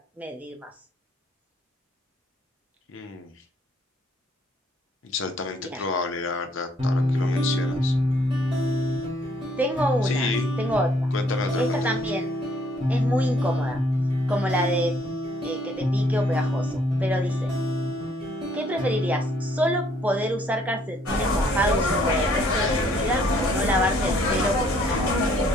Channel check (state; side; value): normal; both; correlation 0.65